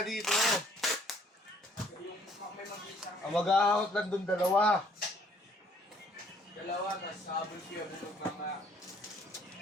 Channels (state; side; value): normal; both; correlation 0.62